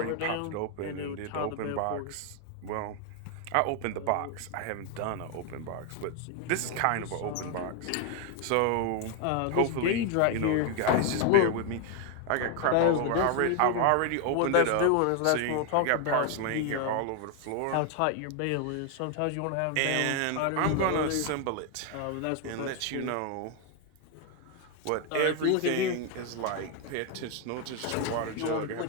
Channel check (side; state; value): both; different; correlation 0.01